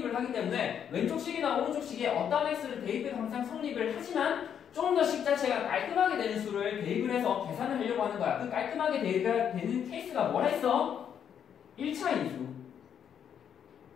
하기 때문에 왼쪽 식이나 오른쪽 식에 어떠한 x를 대입해도 항상 성립을 하지만 좀 더 식 자체가 깔끔하게 되는 수를 대입을 해서 계산을 하려고 하는 거야. 그 깔끔하게 대입되는 케이스가 뭐라 했어? 1차 인수.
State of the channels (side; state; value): right; quieter; 8.5 dB